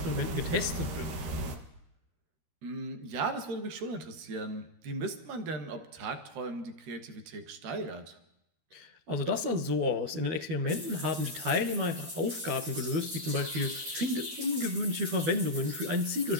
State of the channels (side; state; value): left; late; 13 ms